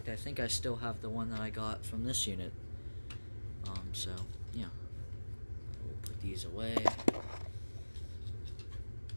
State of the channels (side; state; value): both; inverted; correlation -1.00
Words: I think I still have the one that I got from this unit. So yeah, we'll put these away.